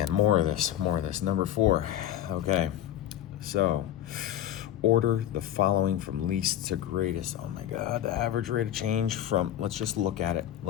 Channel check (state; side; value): quieter; right; 11.6 dB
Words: more of this. Number 4. Okay, so order the following from least to greatest. Oh my God, the average rate of change from, let's just look at it